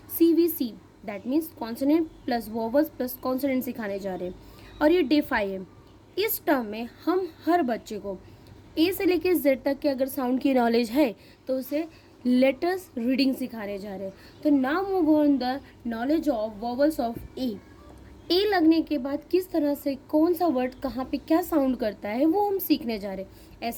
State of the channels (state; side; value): identical; both; correlation 1.00